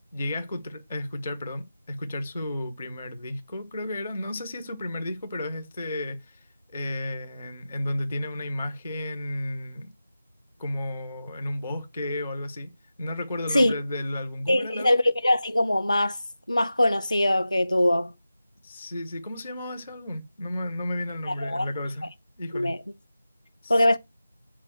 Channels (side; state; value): both; inverted; correlation -0.93